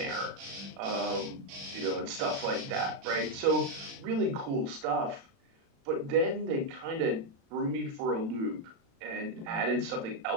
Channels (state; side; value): late; left; 36 ms